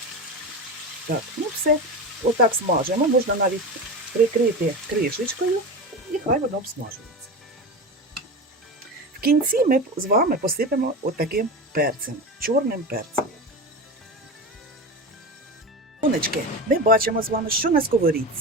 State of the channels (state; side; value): normal; both; correlation 0.24